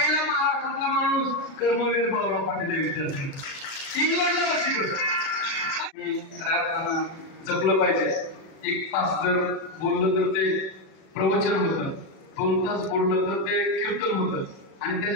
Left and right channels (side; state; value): right; late; 37 ms